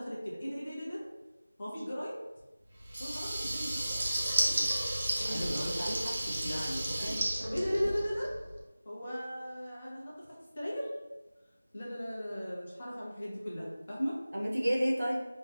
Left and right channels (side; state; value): both; inverted; correlation -0.96